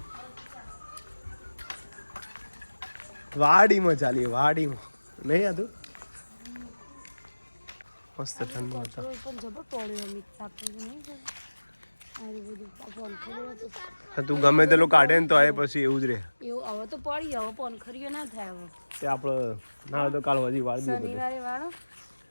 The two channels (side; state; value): both; inverted; correlation -1.00